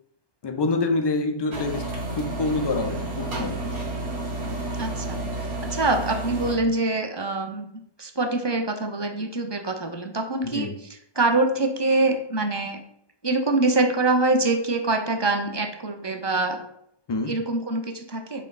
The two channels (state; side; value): late; right; 1.2 ms